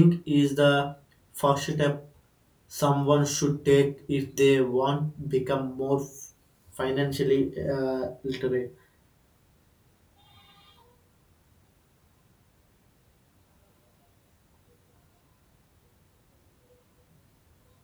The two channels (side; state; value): both; identical; correlation 1.00